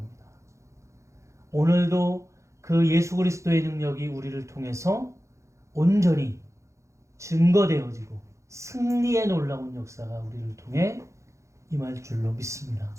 오늘도 그 예수 그리스도의 능력이 우리를 통해서 온전히 증거되어지고 승리의 놀라운 역사가 우리를 통해 임할 줄로 믿습니다.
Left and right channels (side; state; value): left; late; 0.14 ms